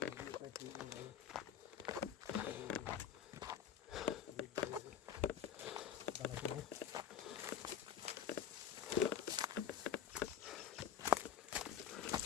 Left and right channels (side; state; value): right; quieter; 9.0 dB